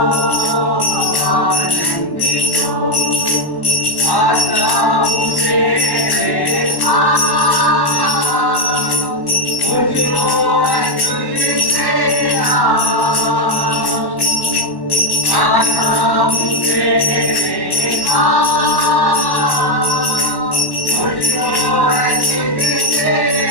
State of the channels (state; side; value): late; right; 1.1 ms